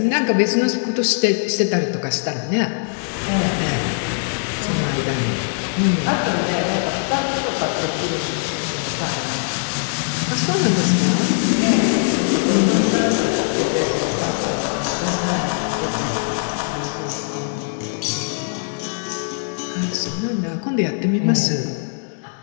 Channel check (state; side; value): silent; right; digital silence